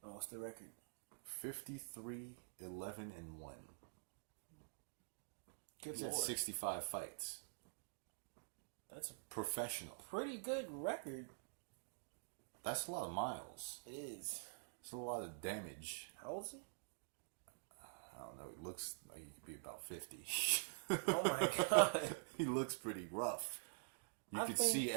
Oh, what's the record? 53, 11, and 1. Good He's lord. had 65 fights. That's a Professional. pretty good record. That's a lot of miles. It is. It's a lot of damage. How old is he? I don't know. He looks like he could be about 50. Oh my god. He looks pretty rough. You I could think- see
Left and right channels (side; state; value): left; silent; digital silence